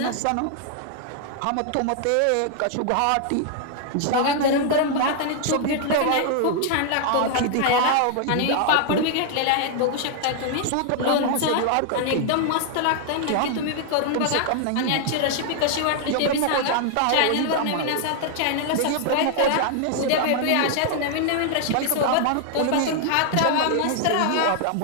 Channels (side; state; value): both; different; correlation 0.00